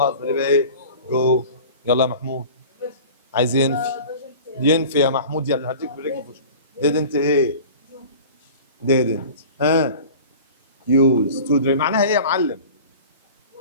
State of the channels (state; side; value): inverted; both; correlation -0.40